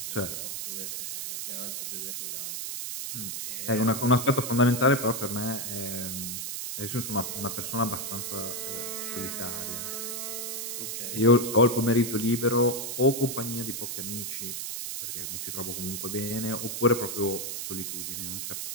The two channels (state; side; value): noise; right; hiss, 4 dB below the sound